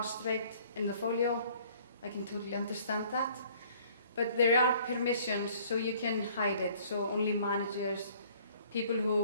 rate in the folio. I can totally understand that. But there are permissions, so you can hide it. So only managers, people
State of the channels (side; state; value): both; inverted; correlation -0.57